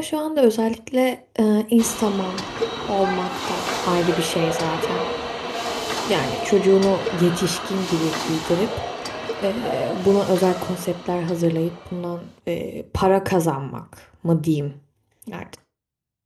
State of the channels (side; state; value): both; identical; correlation 1.00